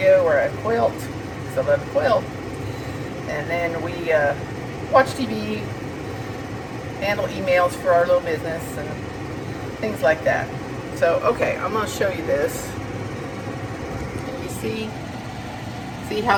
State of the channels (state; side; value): identical; both; correlation 1.00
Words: where I quilt, because I love to quilt. And then we watch TV, handle emails for our little business, and things like that. So, okay, I'm going to show you this. Can you see